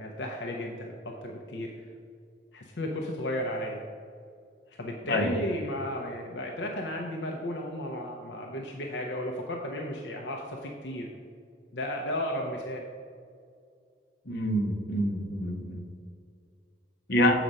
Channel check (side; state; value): both; normal; correlation 0.35